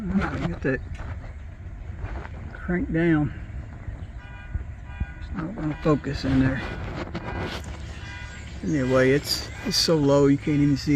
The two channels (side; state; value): both; identical; correlation 1.00